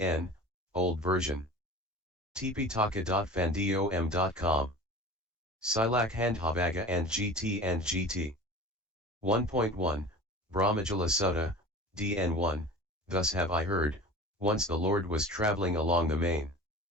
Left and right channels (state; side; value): normal; both; correlation 0.37